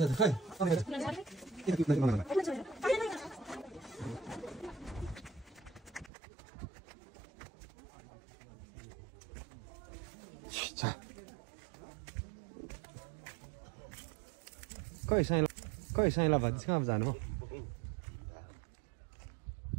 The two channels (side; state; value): left; drops out; at 6.1 s